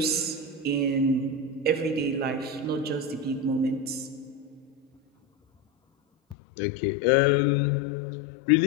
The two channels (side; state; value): right; drops out; at 6.4 s